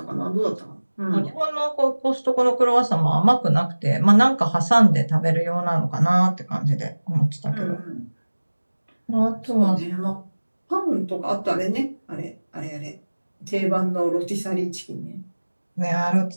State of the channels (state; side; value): inverted; both; correlation -1.00